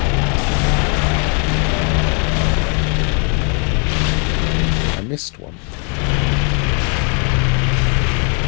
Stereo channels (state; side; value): quieter; right; 39.0 dB